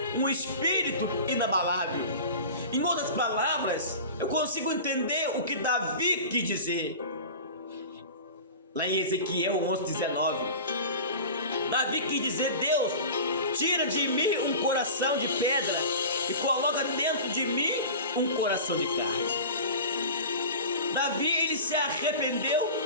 um espírito inabalável. Em outras palavras, eu consigo entender o que Davi quis dizer. Lá em Ezequiel 11:19, Davi quis dizer: Deus, tira de mim um coração de pedra e coloca dentro de mim um coração de carne. Davi, ele se arrependeu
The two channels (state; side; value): inverted; both; correlation -0.35